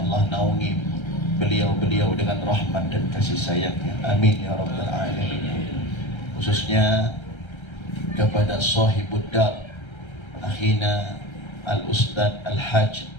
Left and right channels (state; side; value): late; right; 1.3 ms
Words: naungi beliau-beliau dengan rahmat dan kasih sayangnya. Amin ya rabbal alamin. Khususnya kepada sahibud dar akhina al-ustad al-hajj